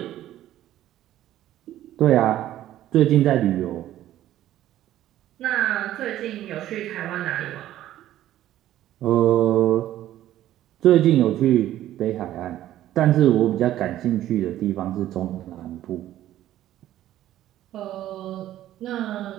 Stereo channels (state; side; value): quieter; left; 13.2 dB